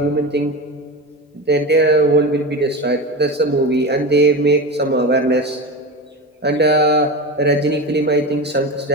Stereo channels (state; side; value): normal; both; correlation 0.24